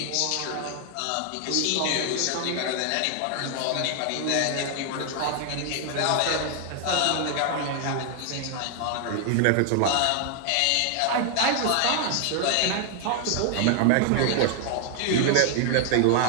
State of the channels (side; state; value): both; different; correlation 0.00